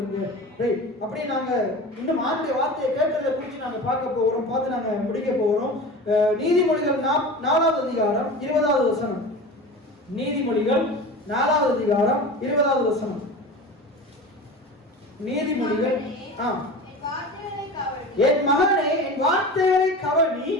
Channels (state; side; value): normal; both; correlation 0.32